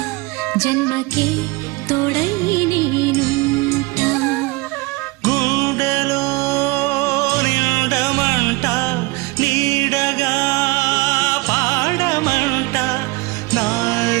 జన్మకే తోడై నేనుంట గుండెలో నిండమంట నీడగా పాడమంట నా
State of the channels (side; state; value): left; quieter; 24.2 dB